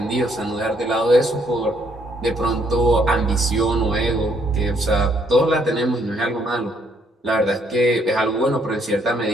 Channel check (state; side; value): normal; both; correlation 0.69